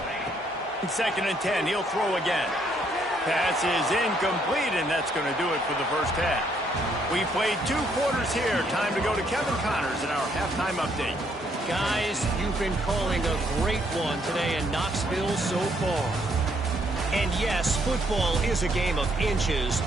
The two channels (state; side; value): normal; both; correlation 0.70